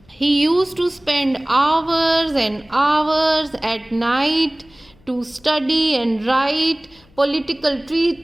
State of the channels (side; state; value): left; noise; hum, 30 dB below the sound